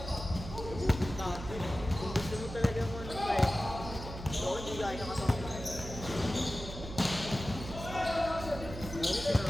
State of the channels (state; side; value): noise; right; hum, 10 dB below the sound